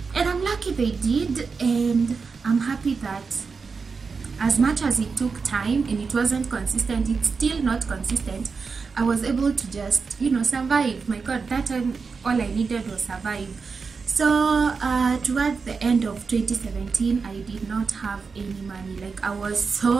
And I'm lucky they did, and I'm happy that as much as it took time and it wasn't consistent, it's still not consistent, I was able to just, you know, survive. My God, that time all I needed was survive. So towards the end of 2017, I did not have any money. Like, I was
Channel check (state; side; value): quieter; left; 5.0 dB